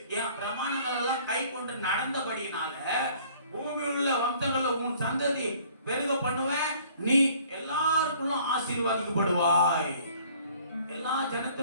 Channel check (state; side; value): inverted; both; correlation -0.55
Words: என் பிரமாணங்கள் எல்லாம் கை கொண்டு நடந்தபடினால பூமியில் உள்ள வம்சங்கள்ல உன் சந்ததி பெருக பண்ணுவேன், நீ எல்லாருக்குள்ளும் ஆசீர்வாதிக்கப்படுவாய், எல்லா